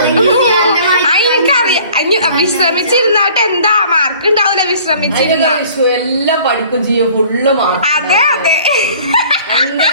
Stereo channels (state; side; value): inverted; both; correlation -0.51